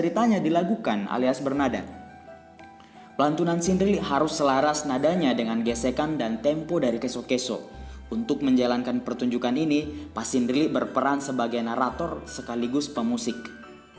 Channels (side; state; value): both; identical; correlation 1.00